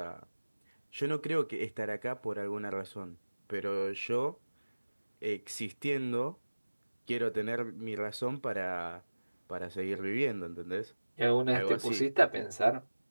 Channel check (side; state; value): both; inverted; correlation -1.00